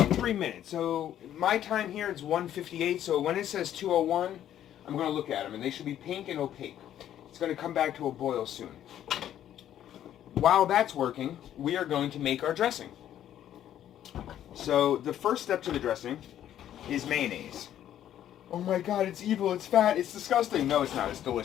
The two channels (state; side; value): quieter; right; 11.2 dB